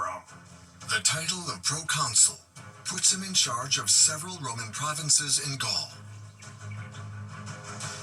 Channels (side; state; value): both; identical; correlation 1.00